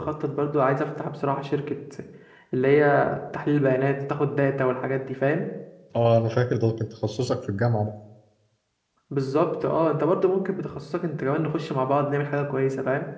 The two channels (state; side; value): identical; both; correlation 1.00